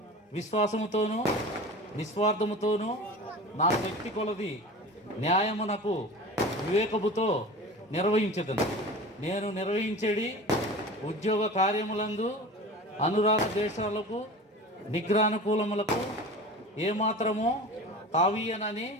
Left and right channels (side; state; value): both; normal; correlation 0.35